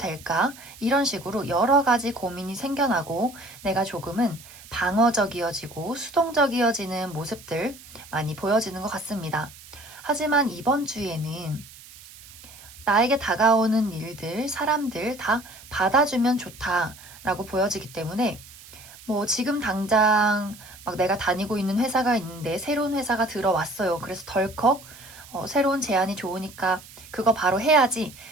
이런 식으로 여러 가지 고민이 생겨나고 내가 조금은 방어적이어지고 수동적이어지는 모습들 많이 보여지는 것 같습니다. 하지만 이번 주에는 나에게 다가오는 일들, 사람들 다 받아주면 좋다라고 보여지기 때문에 지금 당장 막 내가 다니고 있는 회사가 있는데 새로운 회사가 들어왔어요. 그래서 덜컥 새로운 제안이 좋으니까 그거 바로 해야지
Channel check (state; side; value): noise; right; hiss, 19 dB below the sound